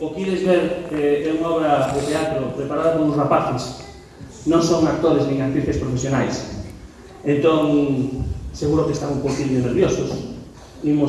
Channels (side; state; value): both; identical; correlation 1.00